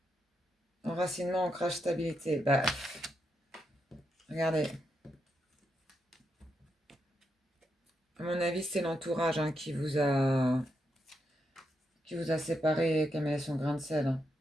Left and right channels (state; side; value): normal; both; correlation 0.82